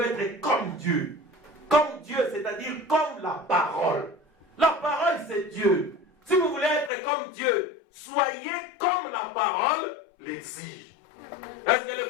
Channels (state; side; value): drops out; right; at 6.9 s